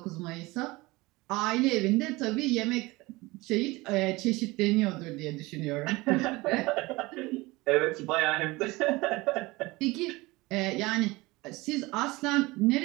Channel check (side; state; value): left; quieter; 21.8 dB